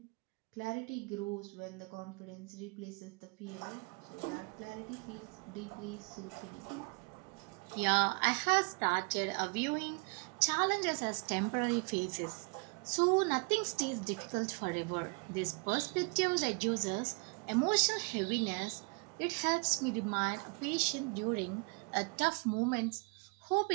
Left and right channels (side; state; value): left; quieter; 33.7 dB